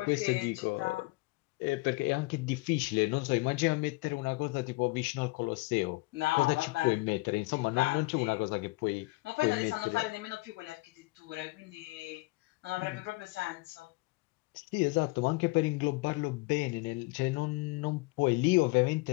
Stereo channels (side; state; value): right; quieter; 23.5 dB